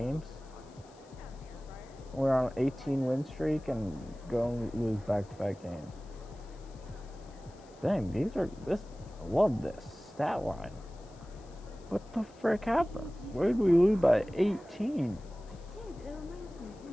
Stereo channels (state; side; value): noise; left; hiss, 27 dB below the sound